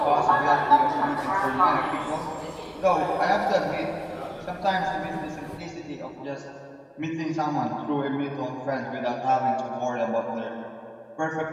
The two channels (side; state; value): both; identical; correlation 1.00